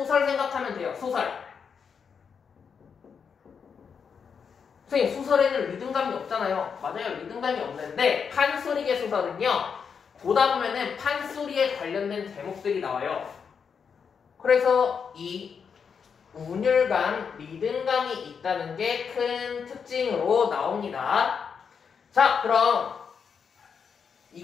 생각하면 돼요. 소설. 선생님, 소설에는 리듬감이 없잖아요. 맞아요. 리듬감이 없는데 판소리계 소설은요, 보다 보면은 판소리에 관련된 제목들이 나와요. 그래서 이 운율감, 리듬감이 있다는 게 큰 특징으로 나옵니다. 자, 그럼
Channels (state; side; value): quieter; right; 6.4 dB